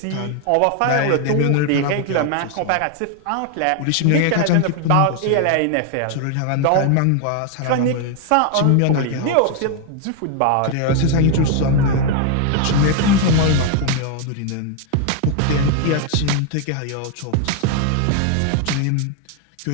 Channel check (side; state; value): both; different; correlation 0.01